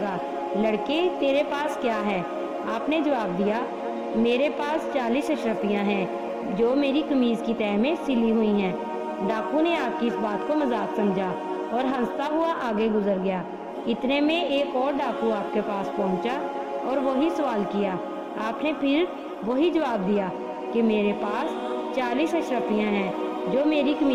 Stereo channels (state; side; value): identical; both; correlation 1.00